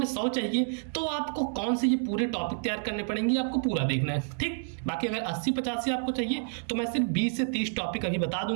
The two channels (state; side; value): silent; left; digital silence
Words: 100 चाहिए तो आपको कौन से ये पूरे टॉपिक तैयार करने पड़ेंगे, आपको पूरा देखना है, ठीक। बाकी अगर 80-85 आपको चाहिए तो मैं सिर्फ 20 से 30 टॉपिक अभी बता